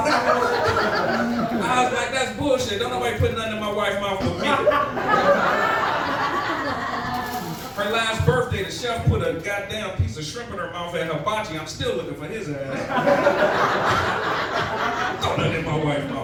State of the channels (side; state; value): both; identical; correlation 1.00